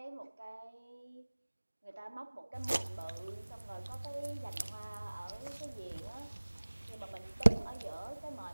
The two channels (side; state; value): both; inverted; correlation -1.00